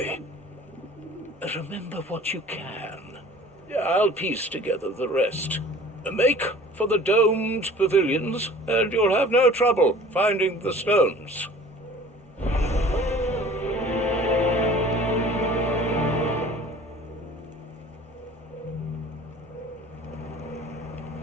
Remember what you can. I'll piece together the rest. Make for the domed pavilions, and you'll have no trouble finding the stones.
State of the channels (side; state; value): both; normal; correlation 0.47